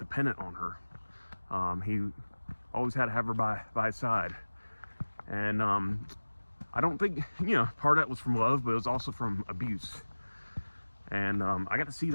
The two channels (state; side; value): inverted; both; correlation -1.00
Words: on her. He always had to have her by his side. And I don't think, you know, part of that was from love, but it was also from abuse. And I got to see